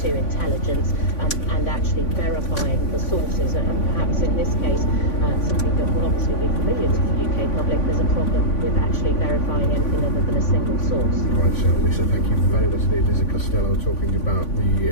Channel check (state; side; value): late; right; 3.5 ms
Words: to intelligence and actually verifying the sources, and perhaps in this case something that will obviously be familiar to the UK public. There's a problem with actually verifying anything other than a single source. Right, so Lisa, thank you very much indeed. Lisa Costello talking about